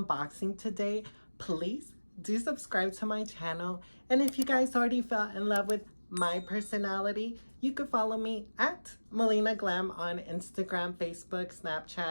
today, please do subscribe to my channel. And if you guys already fell in love with my personality, you could follow me at Melina Glam on Instagram, Facebook,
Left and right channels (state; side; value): inverted; both; correlation -1.00